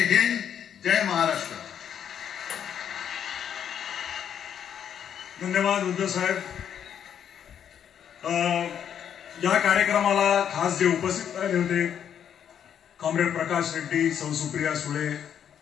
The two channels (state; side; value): quieter; right; 8.9 dB